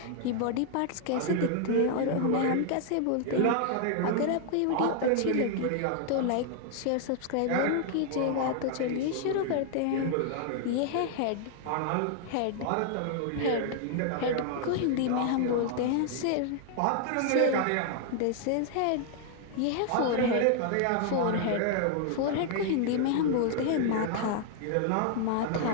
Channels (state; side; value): different; both; correlation 0.00